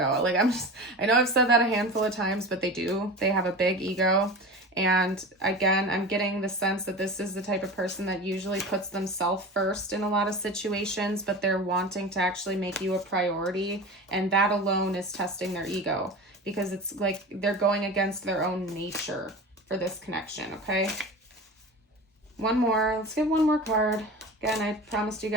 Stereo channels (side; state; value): both; normal; correlation 0.32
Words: Like, I know I've said that a handful of times, but they do. They have a big ego. And again, I'm getting the sense that this is the type of person that usually puts themselves first in a lot of situations, but they're wanting to actually make you a priority. And that alone is testing their ego, because it's like they're going against their own nature for this connection, okay? One more. Let's get one more card. Again, I promised you